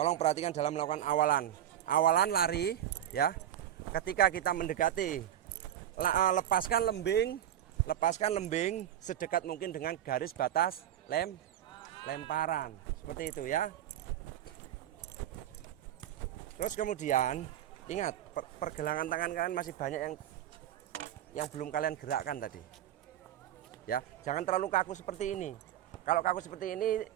perhatikan dalam melakukan awalan. Awalan lari ya. Ketika kita mendekati, lepaskan lembing sedekat mungkin dengan garis batas lemparan. Seperti itu ya. Terus kemudian ingat, pergelangan tangan kalian masih banyak yang belum kalian gerakkan tadi. Ya, jangan terlalu kaku seperti ini. Kalau kaku seperti ini,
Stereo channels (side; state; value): left; quieter; 11.4 dB